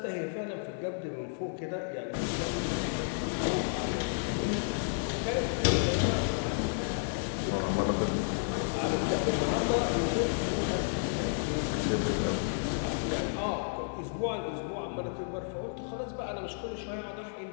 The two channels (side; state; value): right; silent; digital silence